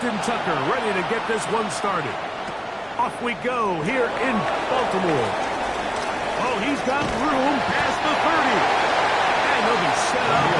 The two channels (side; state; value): both; identical; correlation 1.00